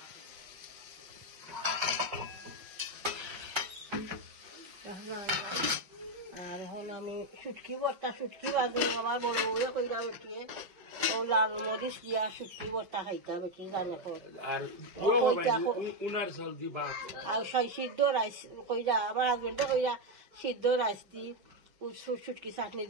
আর এখন আমি শুটকি ভর্তা, শুটকি বাজু আমার বড় বউয়ে কইরা বেটিয়ে ও লাল মরিচ দিয়া শুটকি ভর্তা খাইতা বেটি জানে আর সিদ্ধ রাইস কইরা আমার হাজবেন্ডে কইরা সিদ্ধ রাইস দি শুটকি চাটনি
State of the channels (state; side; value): late; left; 5.3 ms